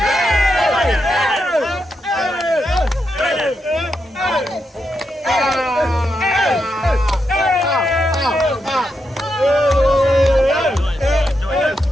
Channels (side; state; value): both; normal; correlation 0.84